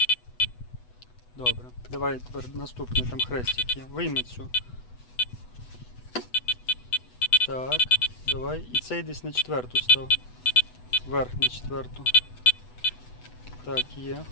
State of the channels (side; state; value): right; late; 8.1 ms